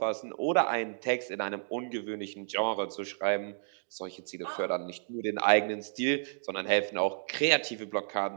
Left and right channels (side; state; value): left; silent; digital silence